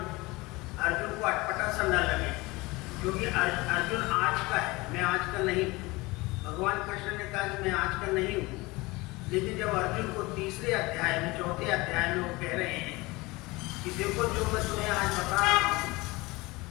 अर्जुन को अटपटा सा न लगे, क्योंकि अर्जुन आज का है, मैं आज का नहीं हूँ। भगवान कृष्ण ने कहा कि मैं आज का नहीं हूँ, लेकिन जब अर्जुन को 3रे अध्याय में 4थे अध्याय में वो कह रहे हैं कि देखो जो मैं तुम्हें आज बता रहा हूँ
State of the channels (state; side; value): quieter; right; 22.7 dB